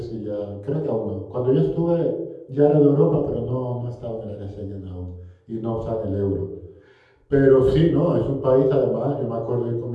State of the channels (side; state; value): both; identical; correlation 1.00